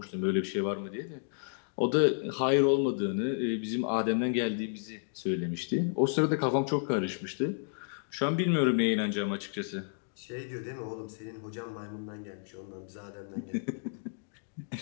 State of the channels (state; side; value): silent; right; digital silence